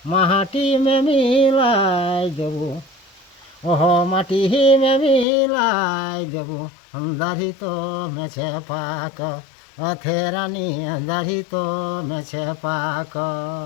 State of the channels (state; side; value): drops out; right; at 5.2 s